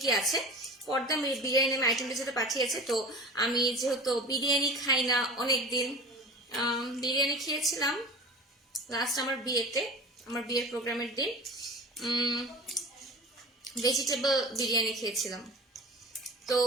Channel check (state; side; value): normal; both; correlation 0.36